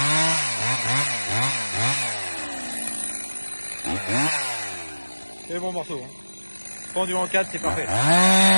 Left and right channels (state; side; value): inverted; both; correlation -1.00